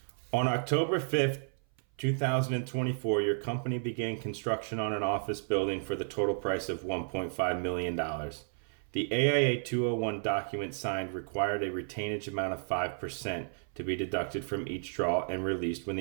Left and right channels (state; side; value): silent; left; 56 dB below the other